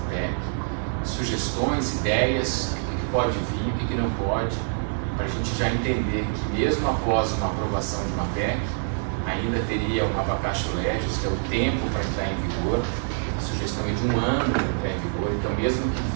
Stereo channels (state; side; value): silent; left; 61 dB below the other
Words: PEC, sugestões, ideias, o que pode vir, o que não pode, para a gente já entender que mesmo após uma aprovação de uma PEC, ainda teria uma vacatio legis, que é o tempo para entrar em vigor, a sugestão é de 1 ano para entrar em vigor, então mesmo que